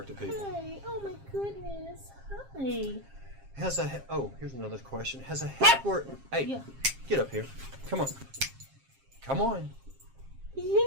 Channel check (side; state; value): left; late; 7.5 ms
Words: at people. Hi. Oh my goodness. Hi. Here's another question. Has a heckler... Hey, Yeah. Get up here. Come on. Come on.